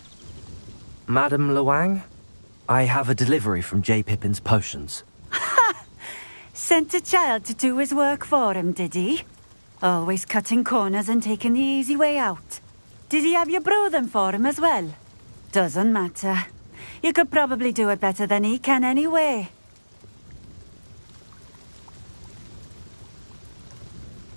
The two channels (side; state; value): both; inverted; correlation -1.00